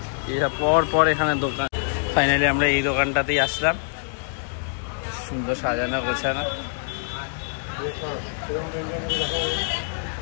এরা পর পর এখানে দোকান। ফাইনালি আমরা এই দোকানটাতেই আসলাম, সুন্দর সাজানো গোছানো।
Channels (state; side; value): silent; right; digital silence